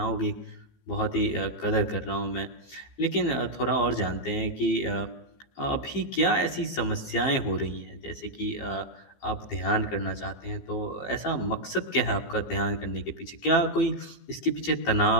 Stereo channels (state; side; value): late; right; 15 ms